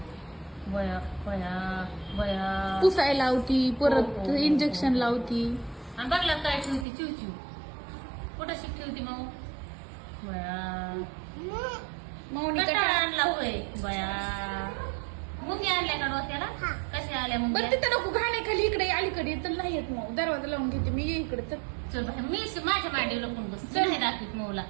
बया बया बया पुसायला लावती परत हो, हो, हो. इंजेक्शन लावती. आणि बघला काय ठेवते चिवचिव कुठं शिक ठेवते मग बया माऊनी कंटाळा कटाळा. आणला होय बया मुंगी आणल्या का डोक्याला कशा आल्या बरं मुंग्या तिथं नको घाण्याखाली इकडे अलीकडे तर नाही येत मग. दरवाजा लावून घेते मी. ये इकडे तर चल बाहेर मी माझ्या मांडीवर लपून बस चल. नाही दाखवीत मऊला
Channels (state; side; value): drops out; left; at 6.9 s